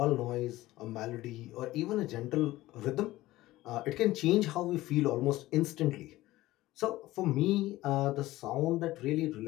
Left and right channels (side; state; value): right; quieter; 17.1 dB